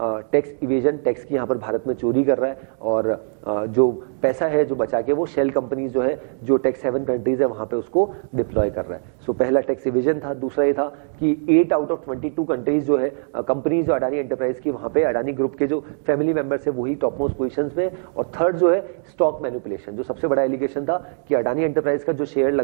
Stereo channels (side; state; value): left; silent; digital silence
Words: tax evasion, tax की यहाँ पर भारत में चोरी कर रहा है और जो पैसा है जो बचा के वो शेल कंपनीज जो है, जो टैक्स हेवन कंट्रीज है वहाँ पे उसको डिप्लॉय कर रहा है। सो पहला टैक्स इवेजन था। दूसरा ये था कि 8 आउट ऑफ 22 कंट्रीज जो है कंपनीज जो अडानी एंटरप्राइज की, वहाँ पे अडानी ग्रुप के जो फैमिली मेंबर्स है वही टॉप मोस्ट पोजीशंस में। और थर्ड जो है स्टॉक मैनिपुलेशन, जो सबसे बड़ा एलिगेशन था कि अडानी एंटरप्राइज का जो शेयर